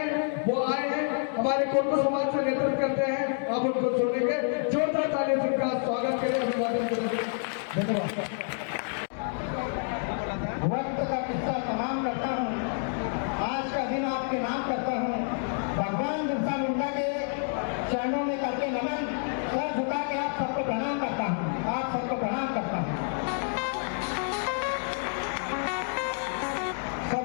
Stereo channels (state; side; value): silent; right; 59 dB below the other